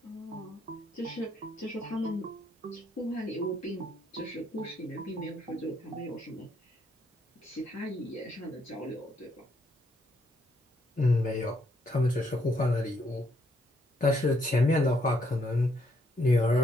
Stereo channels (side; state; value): both; normal; correlation 0.73